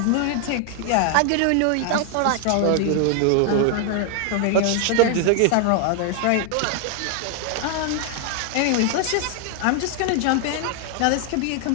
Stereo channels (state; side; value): different; both; correlation 0.00